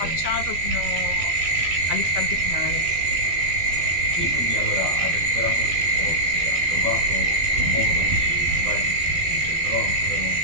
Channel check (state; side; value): late; left; 13 ms